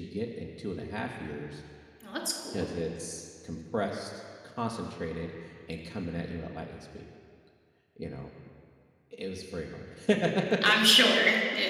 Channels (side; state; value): both; identical; correlation 1.00